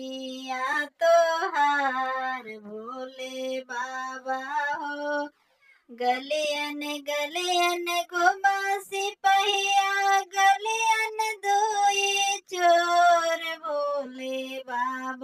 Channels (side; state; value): both; identical; correlation 1.00